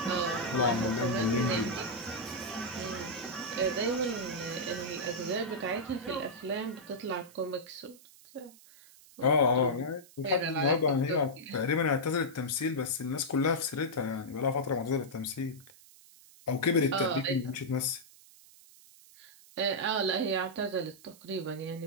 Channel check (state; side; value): noise; right; hiss, 23 dB below the sound